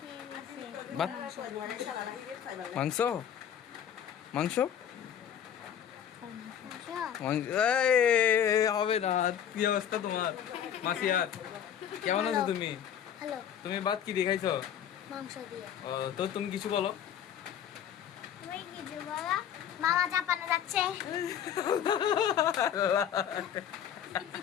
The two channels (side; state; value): right; quieter; 9.3 dB